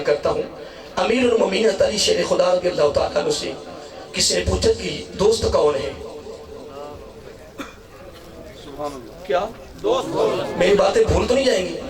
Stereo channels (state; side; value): identical; both; correlation 1.00